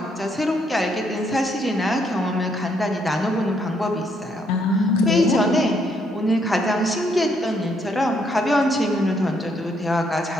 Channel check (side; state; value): both; normal; correlation 0.72